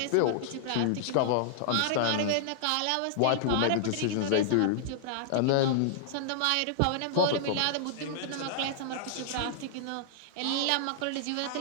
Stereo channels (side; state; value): both; different; correlation -0.01